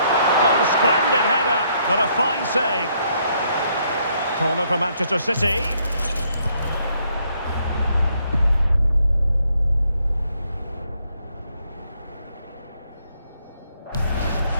Oh, splendid header, but a fine save. Corner for Manchester City.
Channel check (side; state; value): both; inverted; correlation -0.71